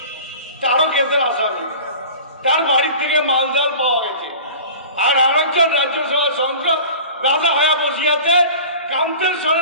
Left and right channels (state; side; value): inverted; both; correlation -0.39